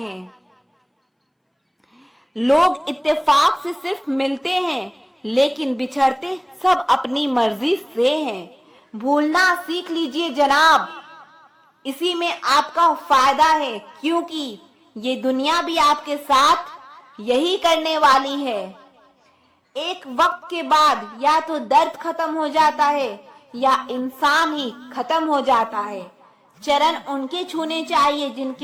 लोग इत्तेफाक से सिर्फ मिलते हैं, लेकिन बिछड़ते सब अपनी मर्जी से हैं। भूलना सीख लीजिए जनाब, इसी में आपका फायदा है, क्योंकि ये दुनिया भी आपके साथ यही करने वाली है। एक वक्त के बाद या तो दर्द खत्म हो जाता है या इंसान ही खत्म हो जाता है। चरण उनके छूने चाहिए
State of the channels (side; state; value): both; identical; correlation 1.00